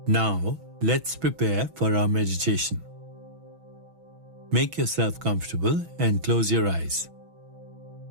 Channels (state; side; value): late; left; 6.1 ms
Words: Now, let's prepare for our meditation. Make yourself comfortable and close your eyes.